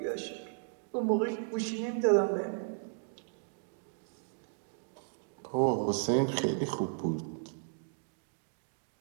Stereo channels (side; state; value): left; silent; digital silence